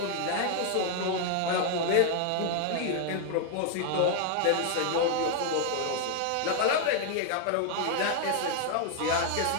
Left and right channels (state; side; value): different; both; correlation 0.00